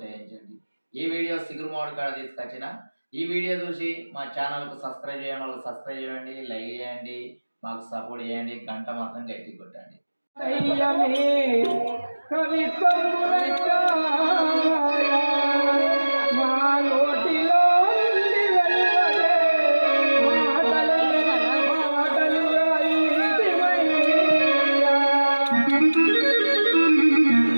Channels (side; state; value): both; inverted; correlation -1.00